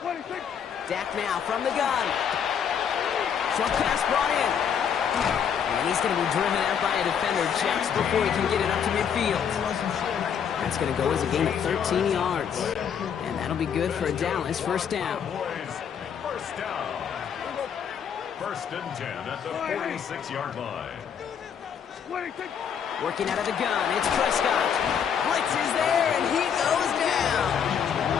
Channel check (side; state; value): right; quieter; 7.8 dB